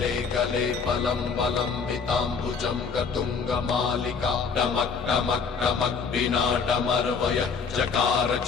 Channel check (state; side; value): quieter; right; 5.5 dB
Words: कले फलं बलम्बिताम्बुजं गतुङ्गमालिका टमक् टमक् टमक् विनाटमर्वय चकार